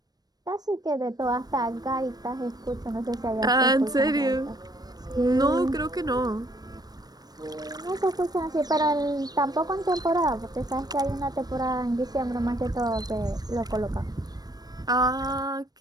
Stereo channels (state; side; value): late; left; 0.19 ms